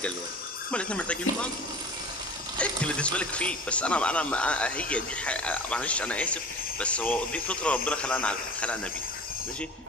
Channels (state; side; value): normal; both; correlation 0.39